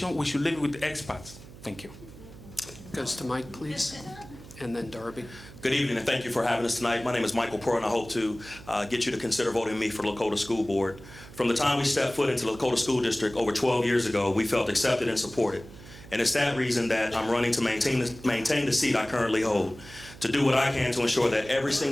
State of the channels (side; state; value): right; noise; hum, 18 dB below the sound